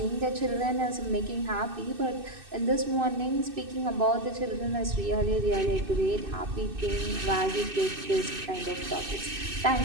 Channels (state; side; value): late; left; 2.6 ms